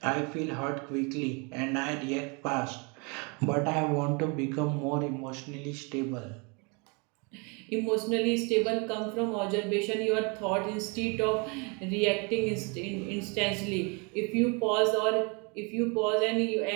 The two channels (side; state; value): left; quieter; 31.8 dB